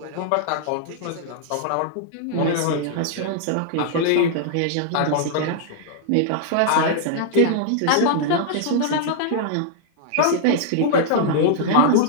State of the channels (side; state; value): both; different; correlation -0.01